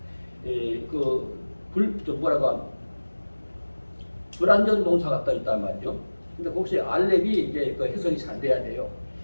불완전 동사가 떠 있단 말이죠. 근데 혹시 알렙이 이제 그 해석이 잘 돼야 돼요.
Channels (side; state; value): both; inverted; correlation -1.00